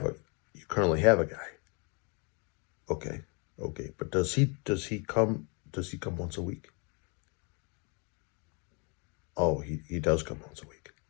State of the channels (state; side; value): quieter; right; 34.0 dB